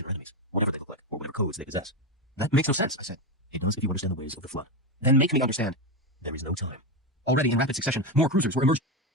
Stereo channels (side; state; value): both; normal; correlation 0.13